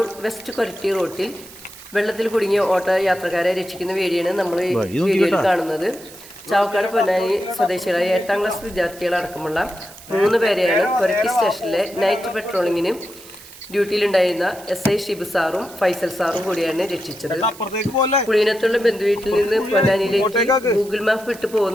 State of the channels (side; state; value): right; noise; hiss, 19 dB below the sound